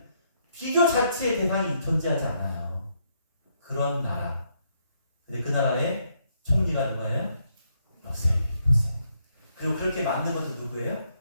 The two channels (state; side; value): inverted; both; correlation -0.75